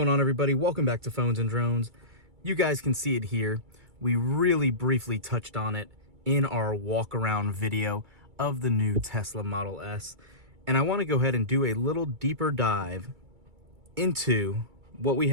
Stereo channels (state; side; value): late; left; 2.3 ms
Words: on, everybody? Welcome back to Phones and Drones. You guys can see it here. We really briefly touched on it in our walk around video of the new Tesla Model S. And I want to go ahead and do a little deeper dive into what we